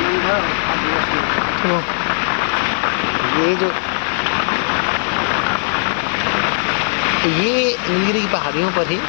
तो ये नीलगिरी की पहाड़ियों पर ही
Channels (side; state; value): right; silent; 64 dB below the other